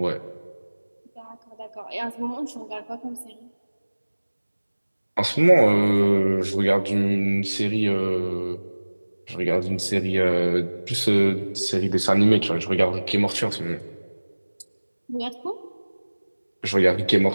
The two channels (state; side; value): inverted; both; correlation -1.00